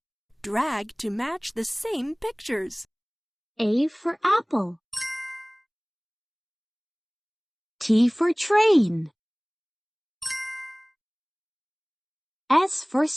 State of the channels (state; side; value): identical; both; correlation 1.00